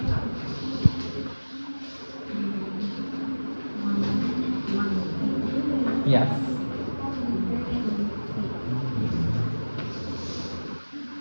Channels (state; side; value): inverted; both; correlation -1.00